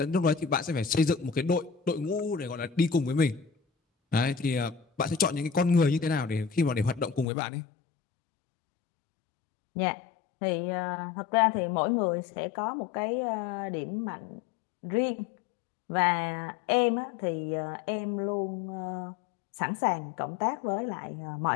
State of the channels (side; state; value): right; drops out; at 7.2 s